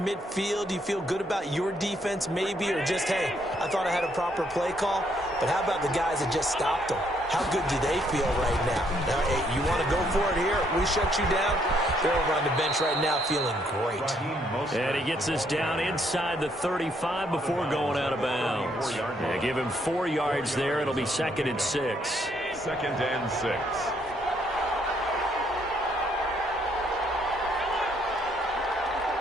you feel good about your defense maybe, or just, hey, I thought I had a proper play call. But how about the guys that just stopped them? How good do they feel right now? Now, hey, you want to go for it here? We shut you down. They're over on the bench right now feeling great. And he gets this down inside the 35 before going out of bounds. Yeah, give him 4 yards there. It'll be 2nd and 6. 2nd and 6.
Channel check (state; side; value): normal; both; correlation 0.71